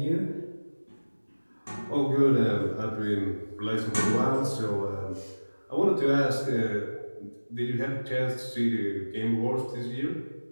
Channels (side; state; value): both; inverted; correlation -1.00